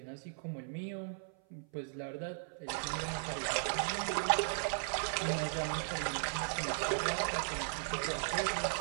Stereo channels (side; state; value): left; silent; 53 dB below the other